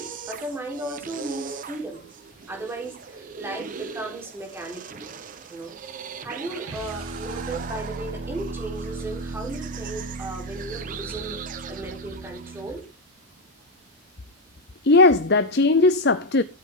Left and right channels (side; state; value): both; normal; correlation 0.10